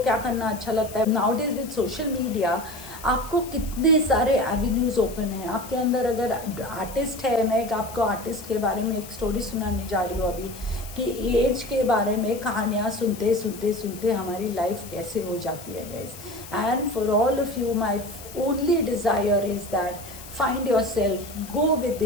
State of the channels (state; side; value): noise; left; hiss, 16 dB below the sound